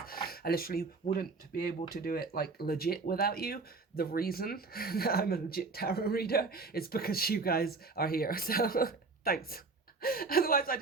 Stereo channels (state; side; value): quieter; left; 4.0 dB